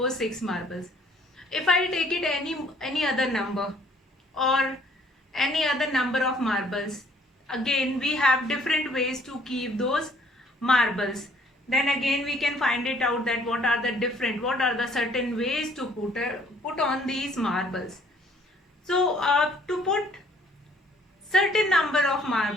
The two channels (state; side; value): normal; both; correlation 0.60